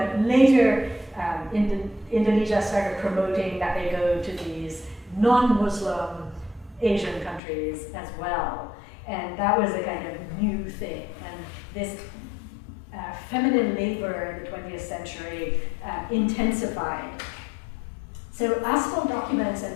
later Indonesia started promoting that they go to these non-Muslim Asian countries as well. And that was a kind of new thing. And this feminine labor in the 20th century intensified. So asphalt documents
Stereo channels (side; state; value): right; drops out; at 7.4 s